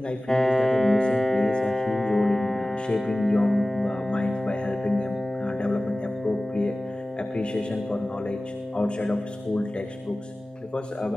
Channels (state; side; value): normal; both; correlation 0.97